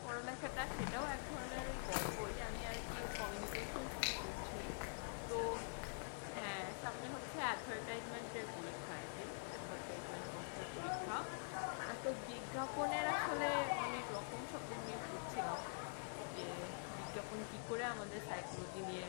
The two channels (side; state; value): right; silent; digital silence